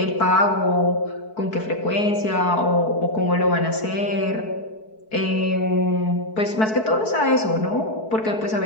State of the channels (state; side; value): late; right; 4.6 ms